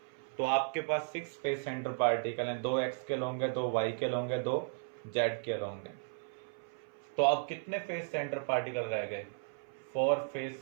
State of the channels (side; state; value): left; silent; 54 dB below the other